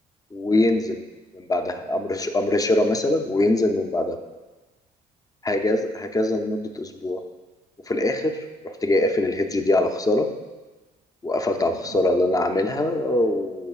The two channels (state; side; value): normal; both; correlation 0.74